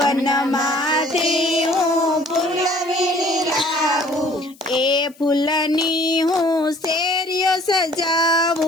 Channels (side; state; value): left; noise; hiss, 27 dB below the sound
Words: हूँ फूल वीणी लावू, ए फूलनी हूँ शेरियो